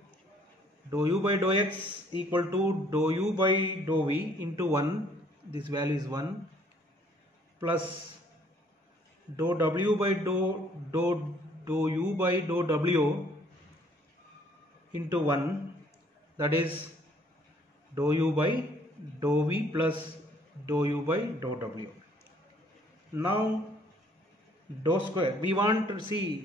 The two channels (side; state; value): both; normal; correlation 0.61